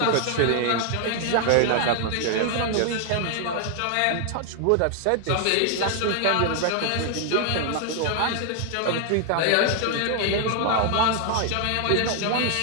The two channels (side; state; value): both; different; correlation 0.00